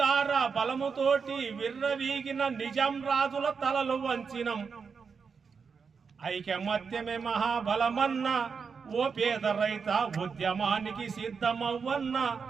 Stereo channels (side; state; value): left; quieter; 5.7 dB